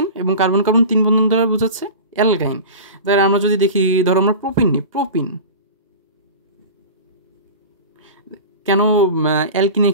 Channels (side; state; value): both; inverted; correlation -0.33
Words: এবং কার্বন কার্বন তিন বন্ধন দ্বারা বোঝাচ্ছে অ্যালকাইন। তাহলে আমরা যদি দেখি, ধরো আমরা প্রোপিন নিই, প্রোপিন কেন অ্যালকিনের